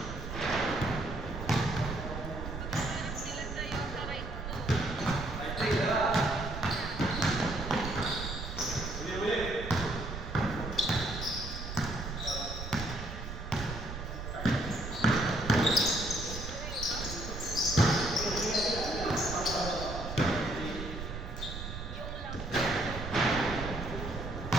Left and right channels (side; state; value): right; noise; rumble, 7 dB below the sound